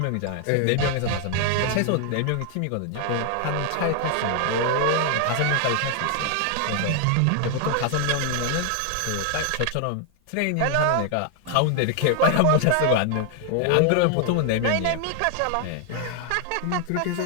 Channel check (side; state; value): both; different; correlation 0.00